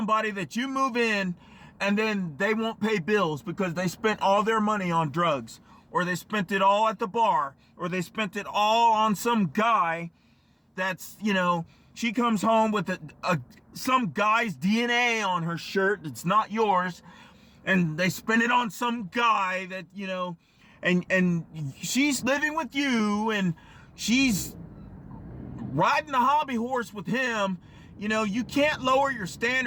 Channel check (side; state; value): both; identical; correlation 1.00